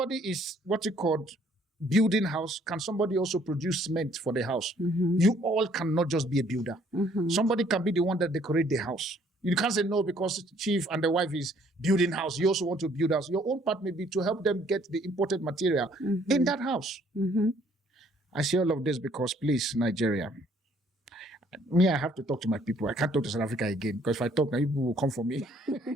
is what you call building house, can somebody also produce cement for the house? You all cannot just be a builder. Somebody can be the one that decorate the house. You can't say no because Chief and the wife is building house. You also want to build house. Your own part may be to help them get the imported material in that house. I say all of this because, please, Nigeria, Me, I have to talk to my people. I can't talk to South Africa again because if I talk, now people will come for me.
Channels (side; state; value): both; normal; correlation 0.63